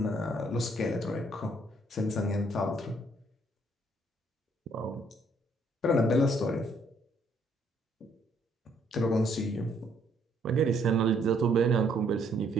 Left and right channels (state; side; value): normal; both; correlation 0.67